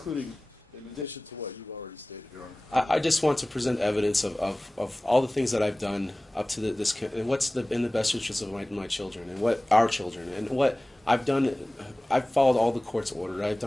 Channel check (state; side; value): normal; both; correlation 0.98